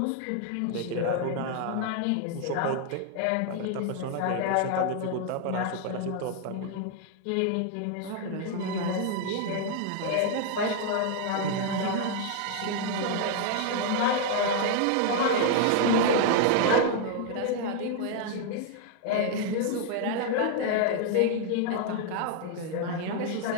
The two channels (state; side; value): different; both; correlation 0.00